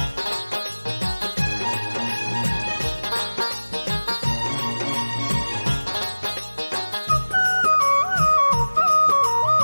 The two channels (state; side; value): inverted; both; correlation -1.00